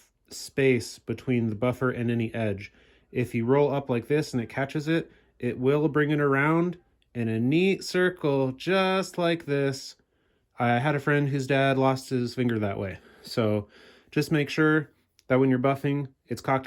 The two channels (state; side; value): identical; both; correlation 1.00